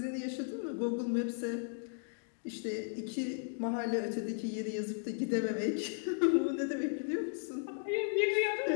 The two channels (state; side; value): silent; right; digital silence